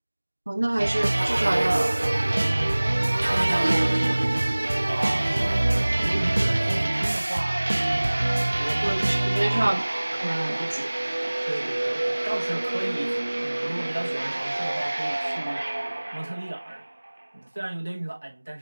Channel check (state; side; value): inverted; both; correlation -1.00